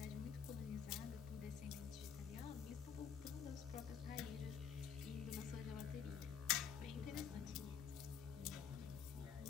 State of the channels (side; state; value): right; quieter; 7.4 dB